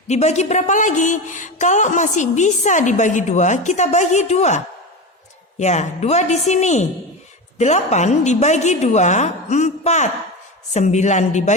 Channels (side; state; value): both; normal; correlation 0.22